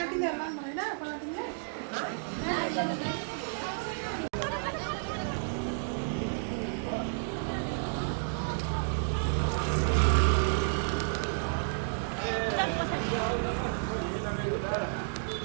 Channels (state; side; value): silent; left; digital silence